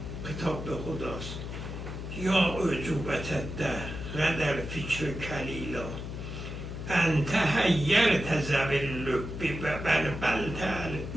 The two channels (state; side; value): noise; left; hum, 7 dB below the sound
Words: کتاب به خداست، یا عجوبت ده غدر فکر کلیلا، انت حیرت ذوی اللب بلبلت